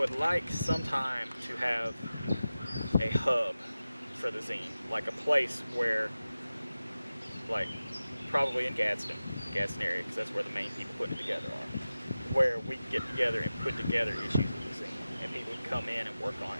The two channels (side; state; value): both; inverted; correlation -0.95